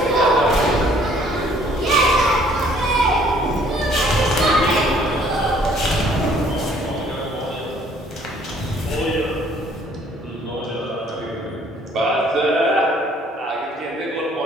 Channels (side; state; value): both; normal; correlation 0.60